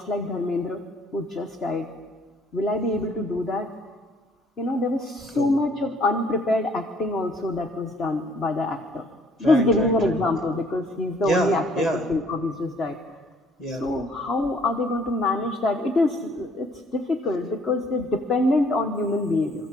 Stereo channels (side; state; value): both; normal; correlation 0.61